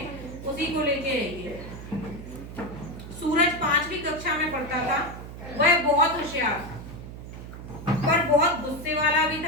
उसी को लेके रहेंगे। सूरज 5वीं कक्षा में पढ़ता था। वह बहुत होशियार पर बहुत गुस्से वाला भी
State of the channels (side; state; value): right; noise; hum, 12 dB below the sound